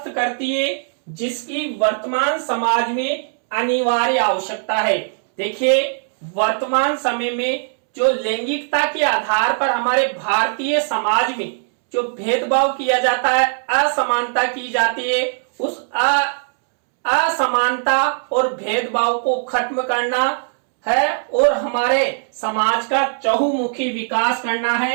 करती है, जिसकी वर्तमान समाज में अनिवार्य आवश्यकता है। देखिए, वर्तमान समय में जो लैंगिकता के आधार पर हमारे भारतीय समाज में जो भेदभाव किया जाता है, असमानता की जाती है, उस असमानता और भेदभाव को खत्म करना है और हमारे समाज का चहुमुखी विकास करना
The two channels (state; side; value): silent; left; 66 dB below the other